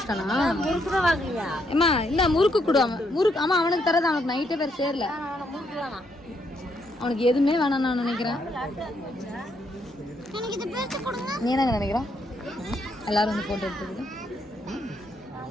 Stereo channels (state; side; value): normal; both; correlation 0.75